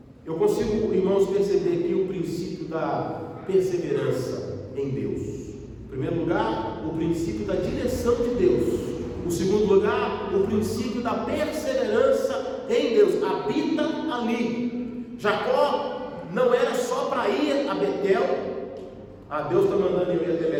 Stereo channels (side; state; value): both; identical; correlation 1.00